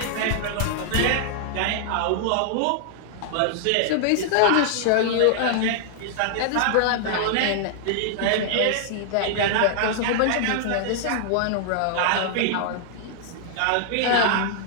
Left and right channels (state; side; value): different; both; correlation -0.01